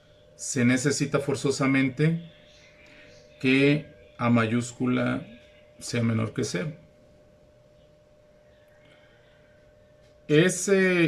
se necesita forzosamente que A mayúscula sea menor que 0.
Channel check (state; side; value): identical; both; correlation 1.00